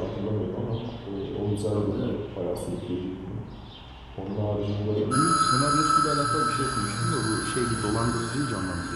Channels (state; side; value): identical; both; correlation 1.00